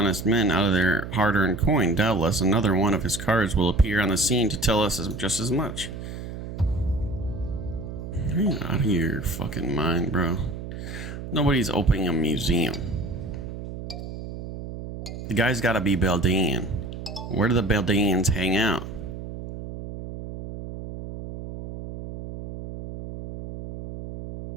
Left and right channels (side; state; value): right; noise; hum, 9 dB below the sound